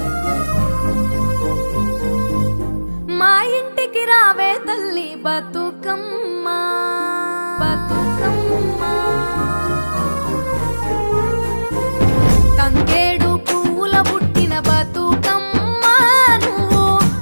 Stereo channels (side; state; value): both; inverted; correlation -1.00